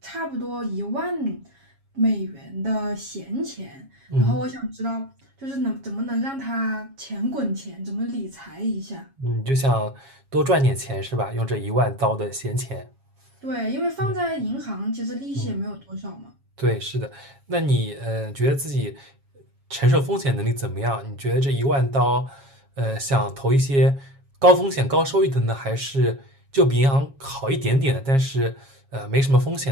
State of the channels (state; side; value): late; left; 7.3 ms